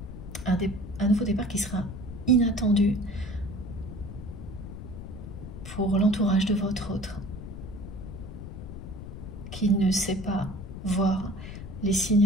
Un nouveau départ qui sera inattendu pour l'entourage de votre autre, qui ne sait pas voir les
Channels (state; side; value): noise; left; rumble, 10 dB below the sound